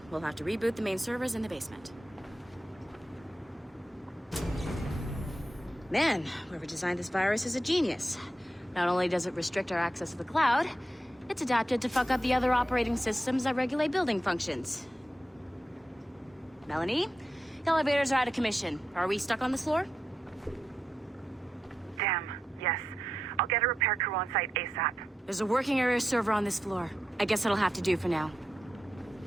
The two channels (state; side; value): normal; both; correlation 0.88